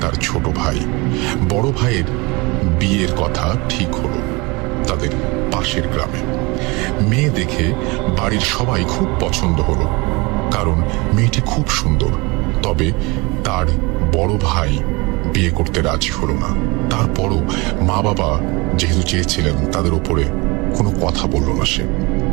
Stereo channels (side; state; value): left; quieter; 25.8 dB